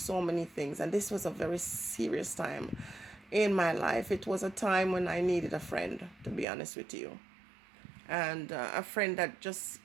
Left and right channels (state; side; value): drops out; left; at 6.5 s